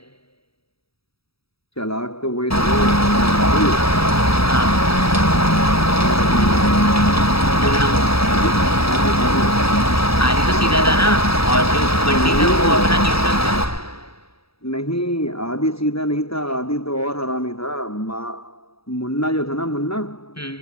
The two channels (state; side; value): late; right; 0.77 ms